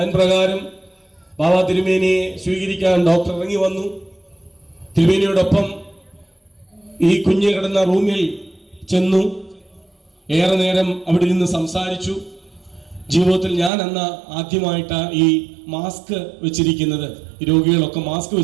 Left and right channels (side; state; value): left; drops out; at 13.7 s